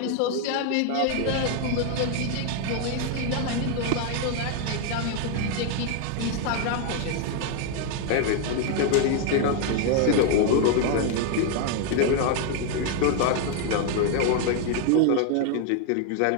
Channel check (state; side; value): different; both; correlation 0.00